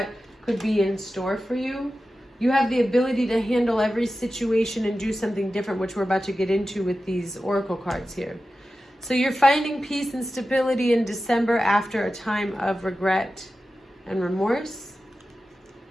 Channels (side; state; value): both; normal; correlation 0.93